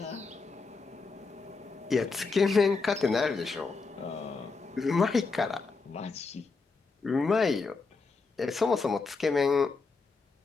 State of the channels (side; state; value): right; quieter; 4.3 dB